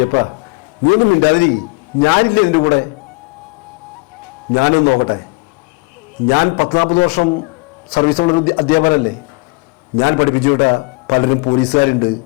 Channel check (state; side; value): quieter; right; 27.9 dB